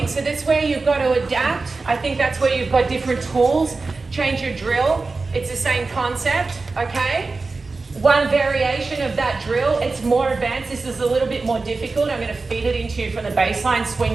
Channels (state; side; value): quieter; left; 3.8 dB